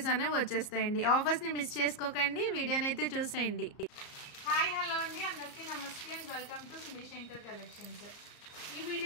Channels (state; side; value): late; right; 34 ms